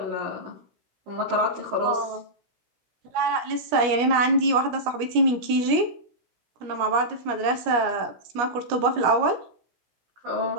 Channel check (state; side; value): late; left; 17 ms